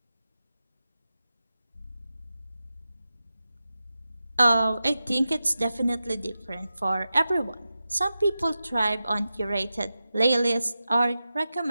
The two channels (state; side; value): inverted; both; correlation -0.92